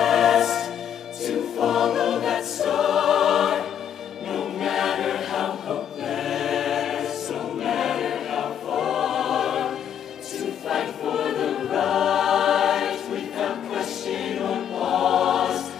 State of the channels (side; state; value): right; quieter; 9.2 dB